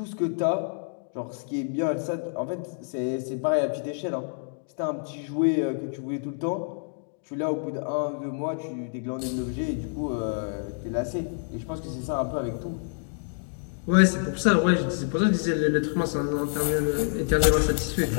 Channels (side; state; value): right; silent; digital silence